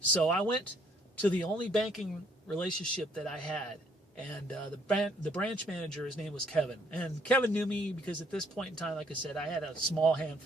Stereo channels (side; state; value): both; normal; correlation 0.66